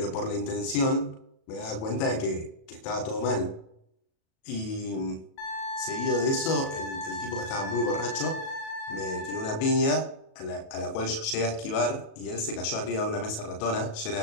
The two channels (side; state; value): right; late; 37 ms